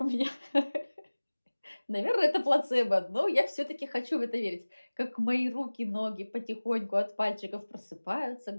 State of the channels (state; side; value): inverted; both; correlation -1.00